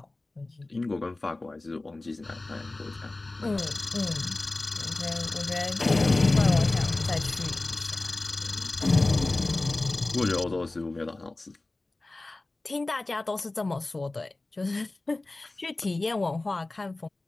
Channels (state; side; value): quieter; right; 3.0 dB